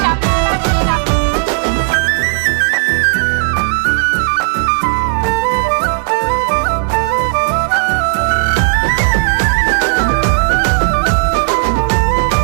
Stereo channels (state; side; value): silent; left; digital silence